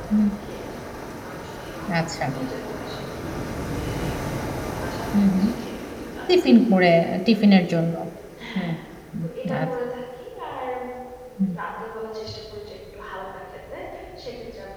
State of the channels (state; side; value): identical; both; correlation 1.00